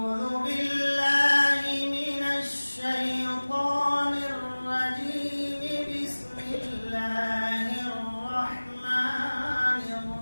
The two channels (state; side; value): inverted; both; correlation -1.00